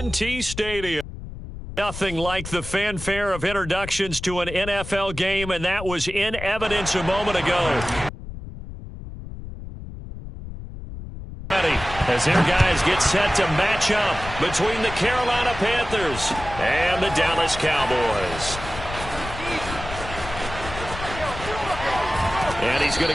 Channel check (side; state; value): left; noise; rumble, 11 dB below the sound